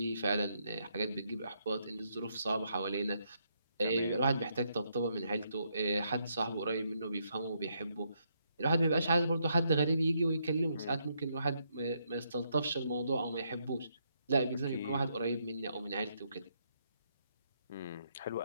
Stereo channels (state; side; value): inverted; both; correlation -0.76